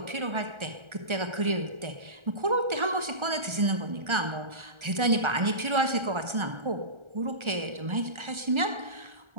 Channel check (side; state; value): left; late; 1.3 ms